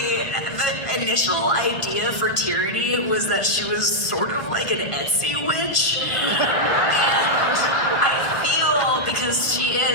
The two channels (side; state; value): right; late; 1.4 ms